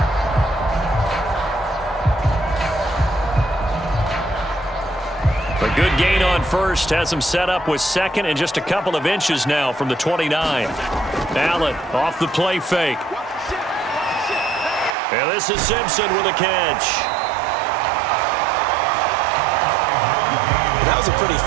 Good gain on first. Has him set up with second and just a couple of inches now from the 29. Allen off the play fake. And this is Simpson with a catch. That was a pretty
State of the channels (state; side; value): drops out; left; at 15.0 s